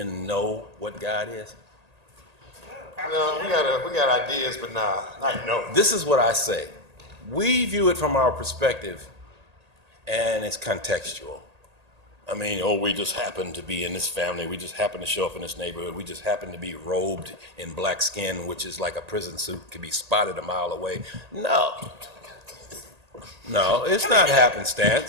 know what God is? No, we got ideas, but not no. This is what I say. We view it from our perspective, and it's contextual. I mean, we just happen to be in this family. We just happen to show up in this neighborhood. We just happen to be robed in black skin, which is like a prison suit, could be spotted a mile away. No, it's not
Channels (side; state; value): left; late; 1.8 ms